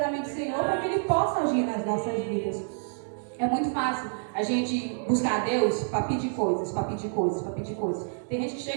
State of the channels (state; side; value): silent; left; 59 dB below the other